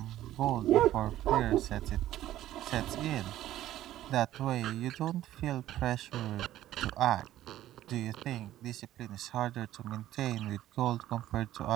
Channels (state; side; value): quieter; left; 13.5 dB